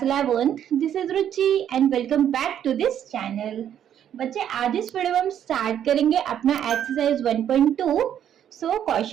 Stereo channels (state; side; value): quieter; left; 9.9 dB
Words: 11th, this is Ruchi and welcome back to this channel. बच्चे आज इस video में हम स्टार्ट करेंगे अपना एक्सरसाइज 1.2. सो